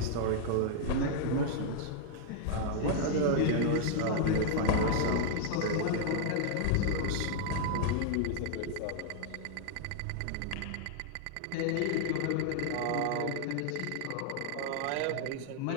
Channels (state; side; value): different; both; correlation -0.01